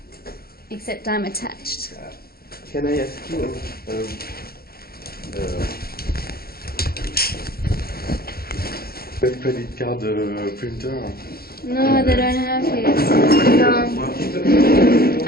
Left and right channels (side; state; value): right; late; 0.44 ms